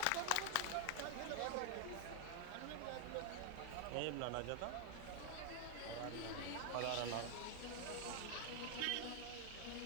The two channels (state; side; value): different; both; correlation 0.00